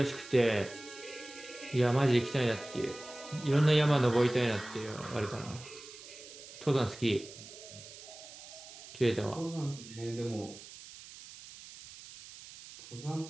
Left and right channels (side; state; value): right; noise; hiss, 16 dB below the sound